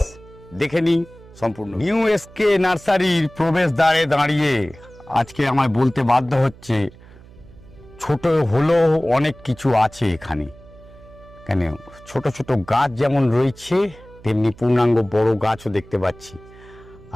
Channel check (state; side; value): noise; right; hum, 22 dB below the sound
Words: দেখে নিই সম্পূর্ণ। নিউ এসকে নার্সারির প্রবেশদ্বারে দাঁড়িয়ে আজকে আমায় বলতে বাধ্য হচ্ছে, ছোট হলেও অনেক কিছু আছে এখানে। কেন, ছোট ছোট গাছ যেমন রয়েছে তেমনি পূর্ণাঙ্গ বড় গাছও দেখতে পাচ্ছি।